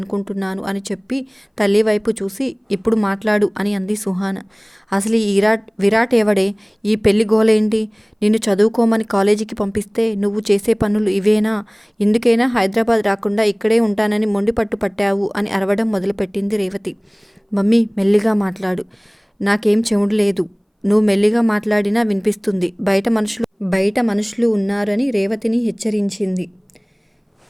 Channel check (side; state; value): both; identical; correlation 1.00